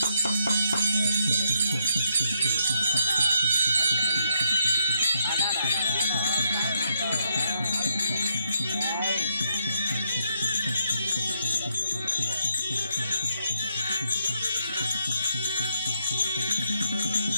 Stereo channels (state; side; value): inverted; both; correlation -0.76